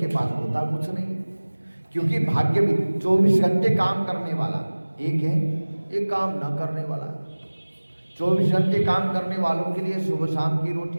पास होता कुछ नहीं, क्योंकि भाग्य भी 24 घंटे काम करने वाला एक है, एक काम न करने वाला। 24 घंटे काम करने वालों के लिए सुबह शाम की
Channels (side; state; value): both; inverted; correlation -1.00